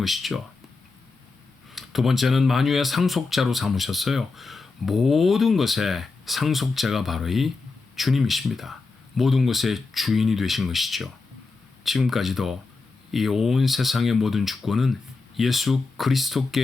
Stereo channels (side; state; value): right; quieter; 4.0 dB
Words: 두 번째는 만유의 상속자로 삼으셨어요. 모든 것의 상속자가 바로 이 주님이십니다. 모든 것의 주인이 되신 것이죠. 지금까지도 이 온 세상의 모든 주권은 예수